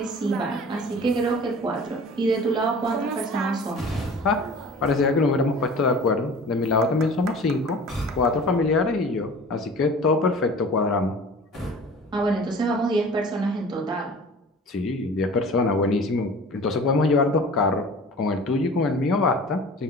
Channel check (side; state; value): both; normal; correlation 0.42